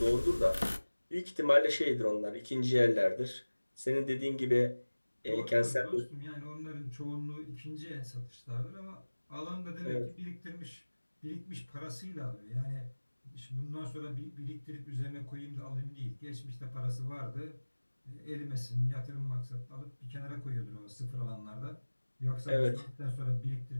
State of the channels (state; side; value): inverted; both; correlation -1.00